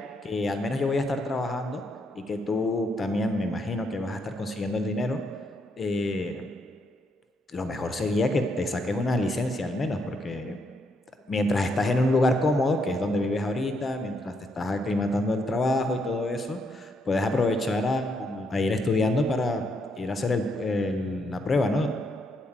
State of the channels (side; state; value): both; normal; correlation 0.76